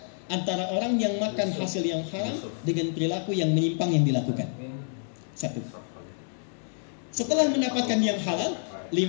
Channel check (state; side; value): silent; right; digital silence